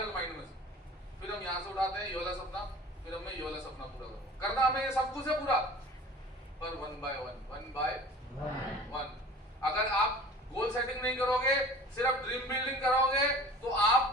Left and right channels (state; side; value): normal; both; correlation 0.43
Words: माइंड में से। फिर हम यहाँ से उठाते हैं ये वाला सपना, फिर मैं ये वाला सपना पूरा करूंगा। करना हमें ये सब कुछ है पूरा, पर 1 by 1 अगर आप गोल सेटिंग नहीं करोगे, सिर्फ ड्रीम बिल्डिंग करोगे, तो